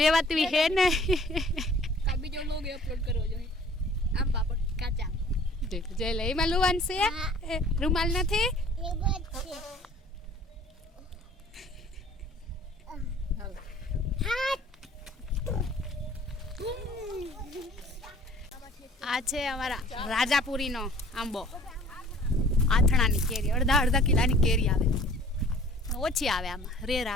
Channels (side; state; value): both; normal; correlation 0.51